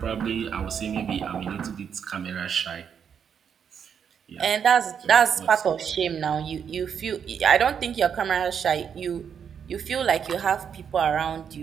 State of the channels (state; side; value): quieter; left; 7.6 dB